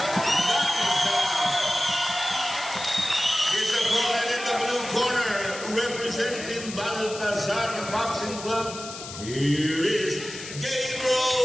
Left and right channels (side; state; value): left; noise; hiss, 11 dB below the sound